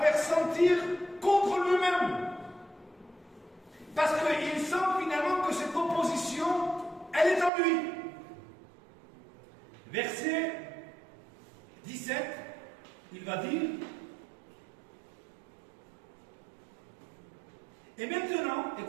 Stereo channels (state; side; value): drops out; left; at 7.5 s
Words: sentir contre lui-même. Parce qu'il sent finalement que cette opposition, elle est en lui. Verset 17, il va dire: et maintenant,